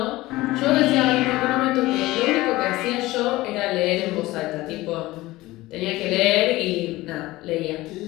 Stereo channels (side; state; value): right; quieter; 18.6 dB